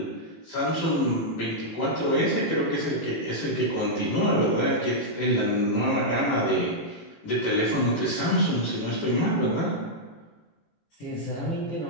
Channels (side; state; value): right; late; 18 ms